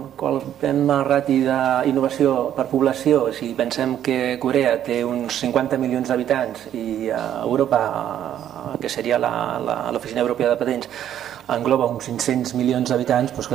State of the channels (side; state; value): left; quieter; 10.7 dB